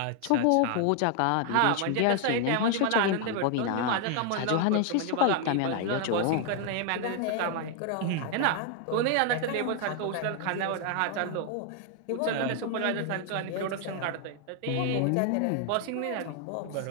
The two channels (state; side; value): different; both; correlation 0.00